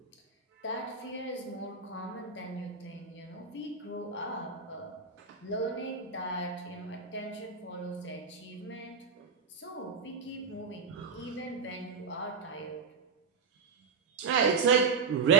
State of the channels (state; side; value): quieter; left; 5.3 dB